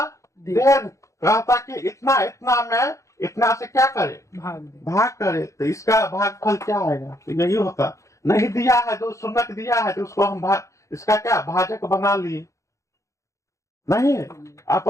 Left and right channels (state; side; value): late; right; 0.15 ms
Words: दे रहता कि इतना इतना में इतना से क्या करे, भाग करे। तो इसका भागफल क्या आएगा, तो यही होता। नहीं दिया है तो शून्य दिया है तो उसको हम इसका क्या भाजक बना लिए, नहीं